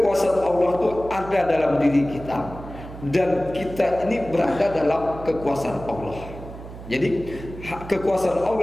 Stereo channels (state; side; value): noise; right; hum, 13 dB below the sound